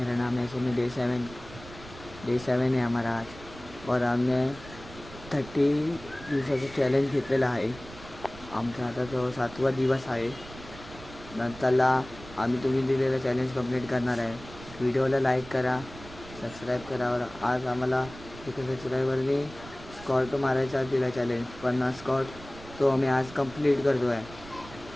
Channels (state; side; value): noise; right; rumble, 17 dB below the sound